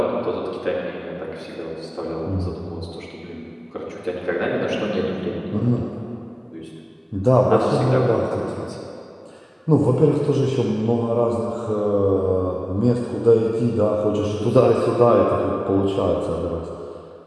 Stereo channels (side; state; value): both; identical; correlation 1.00